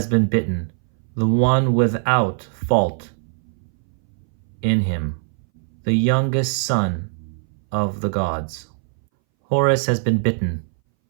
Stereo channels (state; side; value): silent; left; 62 dB below the other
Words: been bitten, the one without fault in him, the youngest son of the gods. Horus has been bitten,